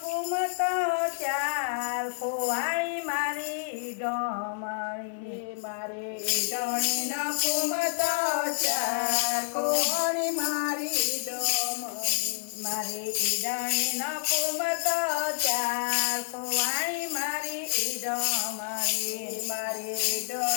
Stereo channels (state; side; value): silent; right; 59 dB below the other